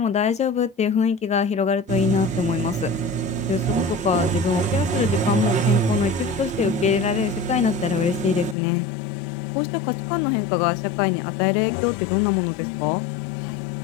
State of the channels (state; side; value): drops out; right; at 8.6 s